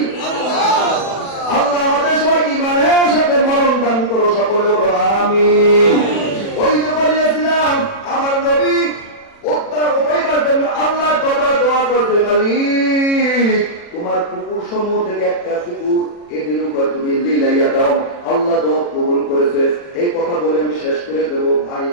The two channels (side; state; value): right; late; 40 ms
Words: আল্লাহ আমাদের সবাইকে ইমানের সাথে মরণ দান করো, সকলে বলো আমিন। ওই যে বলিয়েছিলাম আমার নবী উঠাইবার জন্য আল্লাহ দোয়া করতে, মালিক তোমার কুকুর সমূহ থেকে একটা কুকুর এদের উপর তুমি লীলাইয়া দাও। আল্লাহ দোয়া কবুল করেছে। এই কথা বলে আমি শেষ করে দেবো। ভাই